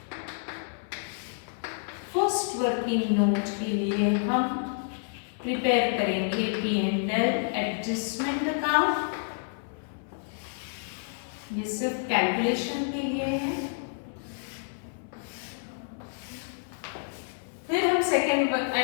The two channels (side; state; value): right; silent; 56 dB below the other